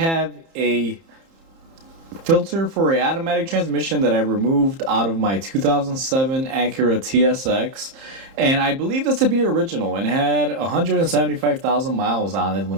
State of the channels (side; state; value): left; late; 30 ms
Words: a filter for an automatic transmission that I removed out of my 2007 Acura TSX, and I believe this to be original and had 175,000 miles on it